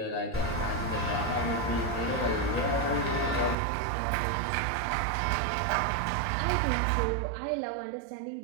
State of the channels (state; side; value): drops out; left; at 3.6 s